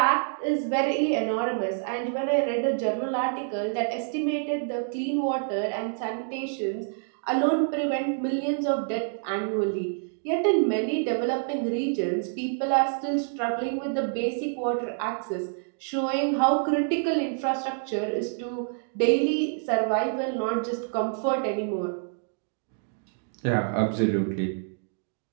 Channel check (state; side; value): silent; left; digital silence